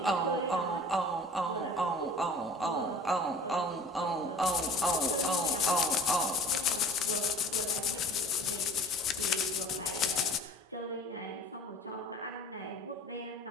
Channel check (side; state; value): both; normal; correlation 0.46